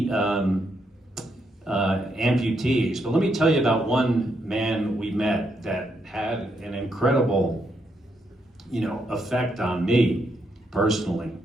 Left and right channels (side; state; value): both; normal; correlation 0.78